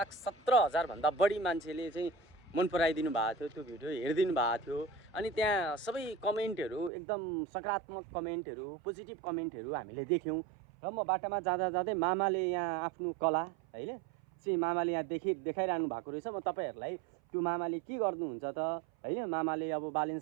भन्दा बढी मान्छेले चाहिँ मन पराइदिनु भएको थियो। त्यो भिडियो हेरिदिनु भएको थियो। अनि त्यहाँ सबै कमेन्टहरू एकदम सकारात्मक कमेन्टहरू, पोजिटिभ कमेन्टहरू हामीले देख्यौँ। र म बाटामा जाँदा जाँदै मामाले यहाँ आफ्नो कला हैन चाहिँ मामाले यहाँ देखाइरहनु भएको रहेछ। म तपाईहरुलाई त्यो मामाले के गर्नुहुन्छ त हैन, मामाले अब बालेन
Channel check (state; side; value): drops out; left; at 6.9 s